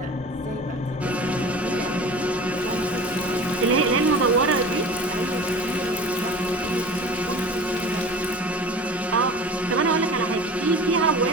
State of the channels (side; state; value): both; normal; correlation 0.39